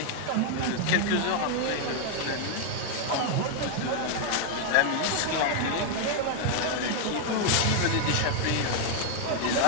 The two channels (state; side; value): different; both; correlation 0.00